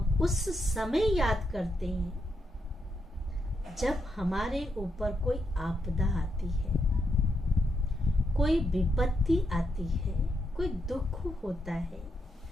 उस समय याद करते हैं जब हमारे ऊपर कोई आपदा आती है, कोई विपत्ति आती है, कोई दुख होता है,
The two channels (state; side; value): normal; both; correlation 0.81